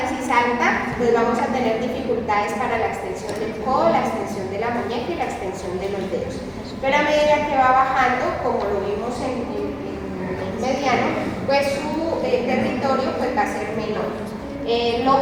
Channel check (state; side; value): identical; both; correlation 1.00